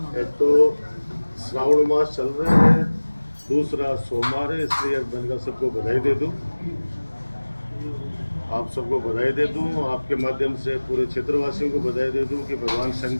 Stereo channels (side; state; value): both; inverted; correlation -1.00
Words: तो श्रावण मास चल रहा है, दूसरा सोमवार है, इसलिए मैंने कहा सबको बधाई दे दूं। आप सबको बधाई दे दूं, आपके माध्यम से पूरे क्षेत्रवासियों को बधाई दे दूं कि भगवान